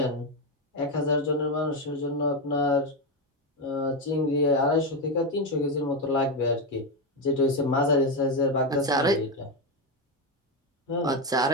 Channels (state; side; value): normal; both; correlation 0.09